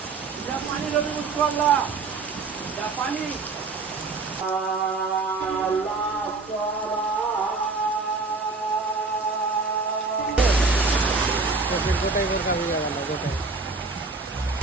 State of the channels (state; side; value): quieter; left; 4.0 dB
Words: গোটাই বোরকা ভিজে গেল, গোটাই।